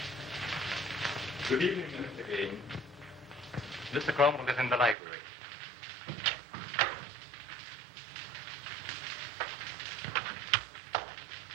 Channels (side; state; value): left; drops out; at 5.0 s